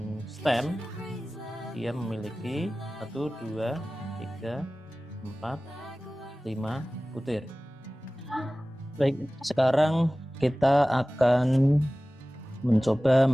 STEM dia memiliki 1, 2, 3, 4, 5 butir. Baik, sekarang kita akan mencoba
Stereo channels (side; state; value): both; normal; correlation 0.97